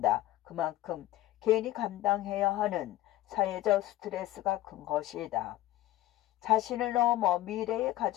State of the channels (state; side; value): quieter; right; 15.4 dB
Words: 그만큼 개인이 감당해야 하는 사회적 스트레스가 큰 것이다. 자신을 넘어 미래의